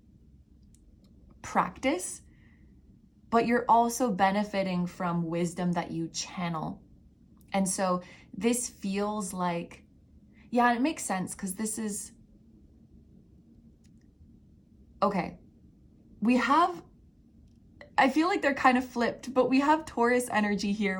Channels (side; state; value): both; identical; correlation 1.00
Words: practice, but you're also benefiting from wisdom that you channel. And so this feels like, yeah, it makes sense because this is, okay, we have, I feel like they're kind of flipped, but we have Taurus energy